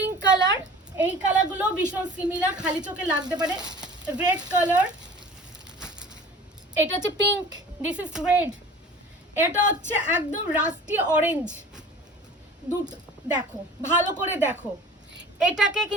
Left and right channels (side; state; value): both; normal; correlation 0.43